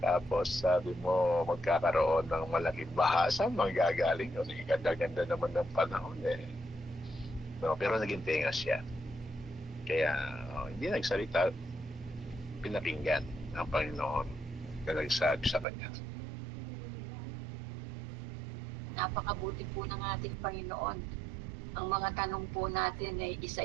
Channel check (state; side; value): drops out; left; at 15.7 s